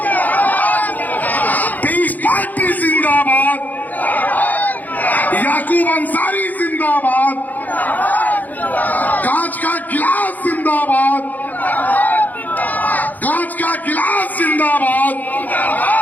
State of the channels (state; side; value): late; right; 0.082 ms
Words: पीस पार्टी जिंदाबाद, याकूब अंसारी जिंदाबाद, कांच का गिलास जिंदाबाद, कांच का गिलास जिंदाबाद,